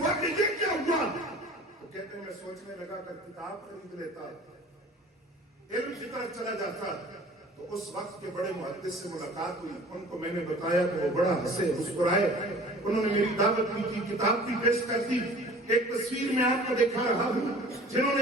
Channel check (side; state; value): both; normal; correlation 0.46